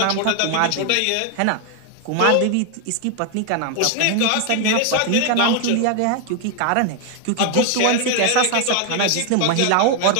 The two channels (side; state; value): both; different; correlation 0.00